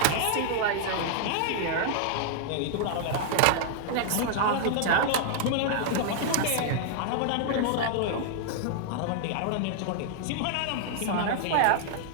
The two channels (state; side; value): different; both; correlation -0.01